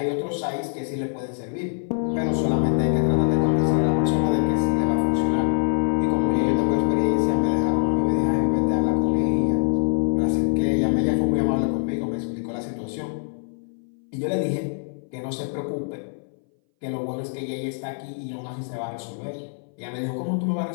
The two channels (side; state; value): right; silent; 60 dB below the other